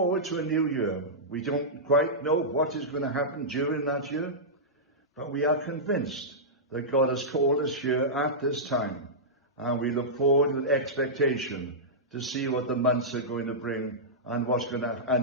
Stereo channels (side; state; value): both; normal; correlation -0.13